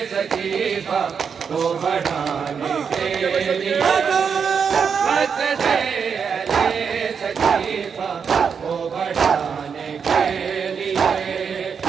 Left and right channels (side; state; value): left; quieter; 6.5 dB